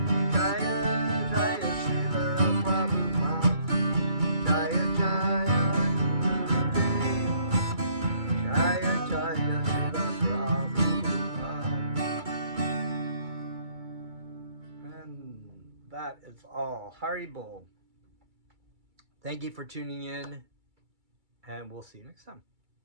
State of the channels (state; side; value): late; left; 2.3 ms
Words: Jaya Jaya Srila Prabhupada, Jaya Jaya Gurudev, Jaya Jaya Srila Prabhupada. And that is all. Haribol. Thank you for tuning in, and we'll see you next time.